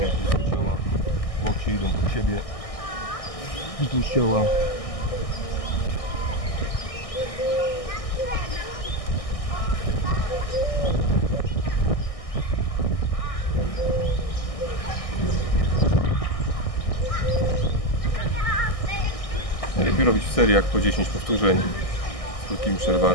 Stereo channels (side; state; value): right; late; 1.6 ms